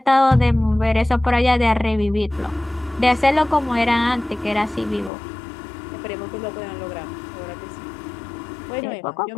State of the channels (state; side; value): drops out; right; at 5.1 s